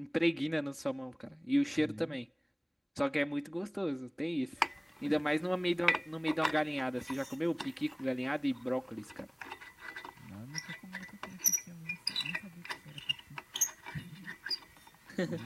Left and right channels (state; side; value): identical; both; correlation 1.00